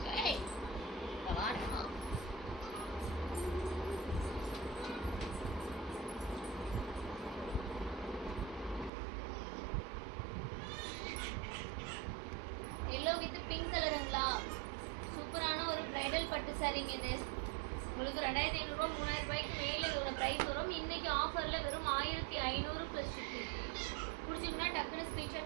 Yellow with pink color ங்களா சூப்பரான ஒரு bridal பட்டு சாரிங்க இது. உங்களுக்கு 2500 ரூபாய் 3000 ரூபாய்க்கு மேலே இதோட பிரைஸ் வரும். இன்னைக்கு ஆஃபர்ல வெறும் 1500 ப்ளஸ் ஷிப்பிங். பிடிச்சிங்கன்னா டக்குன்னு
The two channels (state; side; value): drops out; left; at 8.9 s